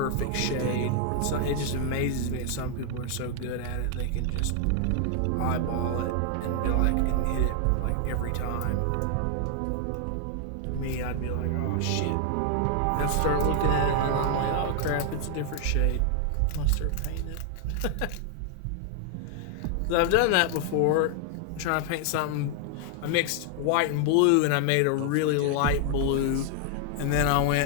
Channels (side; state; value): both; different; correlation 0.00